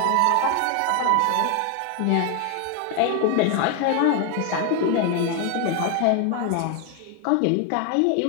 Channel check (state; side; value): different; both; correlation 0.01